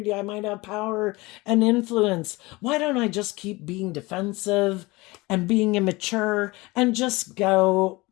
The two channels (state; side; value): quieter; right; 22.6 dB